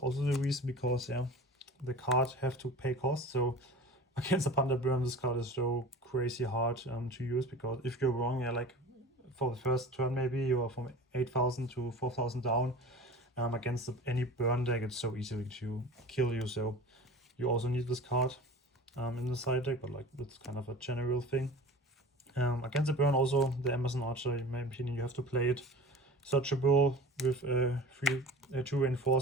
the reason, because yeah, the card have to pay cost. So against a Panda Burn, this card is so crazy hard to use, because if you're wrong, yeah, like for the first turn maybe you are from 8000 to 4000 down, against any burn deck it's so easy to kill you. So you also need this card in the side deck, but like that's kind of a general thing. Against the burn, also the Amazon Archer, in my opinion, you have to play it searchable with 2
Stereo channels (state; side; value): normal; both; correlation 0.38